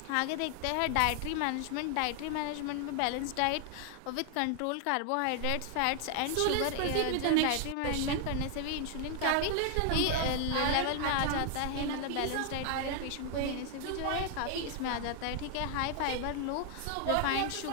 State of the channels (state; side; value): different; both; correlation 0.00